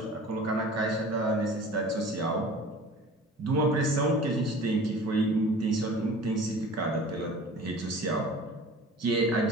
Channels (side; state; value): both; normal; correlation 0.42